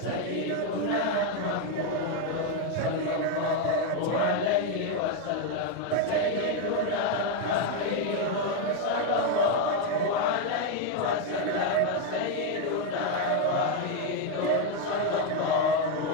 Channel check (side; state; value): both; different; correlation 0.02